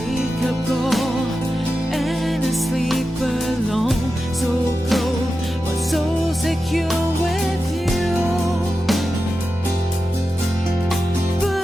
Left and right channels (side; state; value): both; normal; correlation 0.91